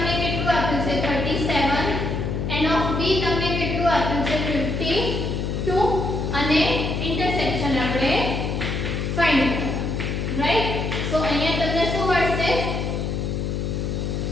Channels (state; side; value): noise; left; hum, 1 dB below the sound